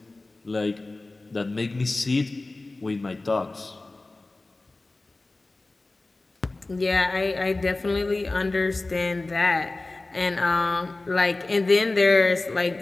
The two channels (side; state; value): right; quieter; 3.1 dB